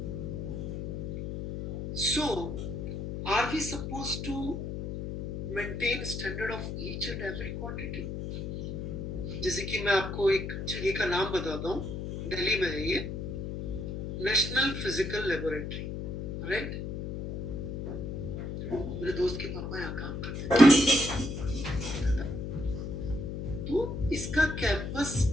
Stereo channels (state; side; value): noise; left; hum, 5 dB below the sound